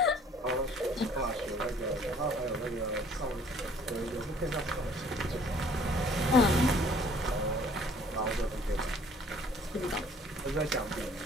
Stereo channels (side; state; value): both; normal; correlation 0.56